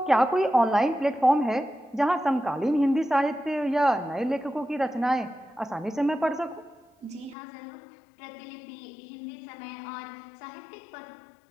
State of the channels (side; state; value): right; drops out; at 7.4 s